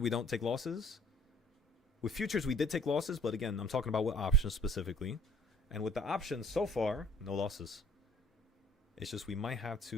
don't take losses. With futures, we did take losses, but again, I'm talking about with options specifically. And with the options so far, no losses. It's just we might have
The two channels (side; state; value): both; normal; correlation 0.55